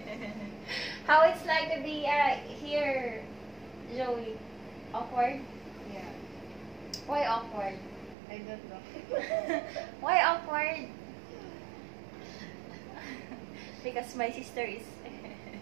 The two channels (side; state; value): left; drops out; at 8.2 s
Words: How it's like to be here, Joey? Awkward? Yeah, Why awkward? I don't know. Why awkward? Because my sister is